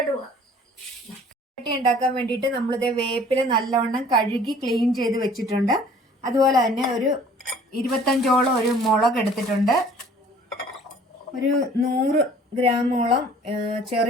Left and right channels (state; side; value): normal; both; correlation 0.52